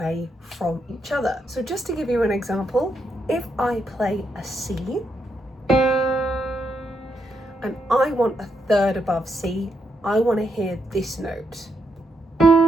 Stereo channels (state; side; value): normal; both; correlation 0.80